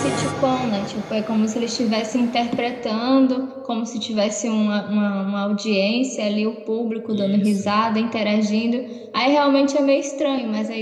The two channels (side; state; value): both; identical; correlation 1.00